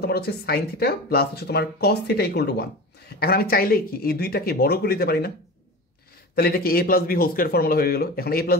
তোমার হচ্ছে সাইন থিটা প্লাস হচ্ছে তোমার কস থিটা ইকুয়াল টু 1। এখন আমি চাইলেই কি এই দুইটাকে বড় করে দিতে পারি না? তাহলে এটা কি A plus B whole square formula হয়ে গেল। এখন A plus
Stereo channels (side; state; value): both; normal; correlation 0.31